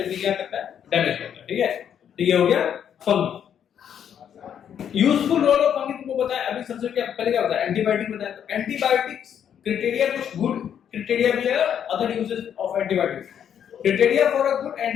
भी क्या करता है? डैमेज करता है। ठीक है, तो ये हो गया fungi. Useful role of fungi तुमको बताया अभी। सबसे क्या पहले क्या बताया? एंटीबायोटिक बताया। तो एंटीबायोटिक्स क्राइटेरिया कुछ गुड क्राइटेरिया भी है, other uses of antibiotics. Criteria for a good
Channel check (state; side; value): quieter; right; 8.9 dB